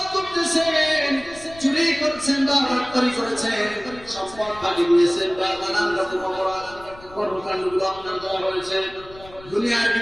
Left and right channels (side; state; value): left; noise; rumble, 20 dB below the sound